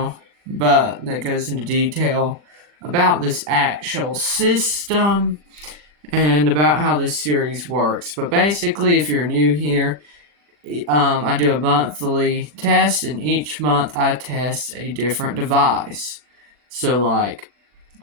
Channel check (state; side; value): late; left; 40 ms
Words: but that goes into detail about this actual system and about how this series works. But basically, if you're new here, I do a monthly test, and each month I test a different device. So like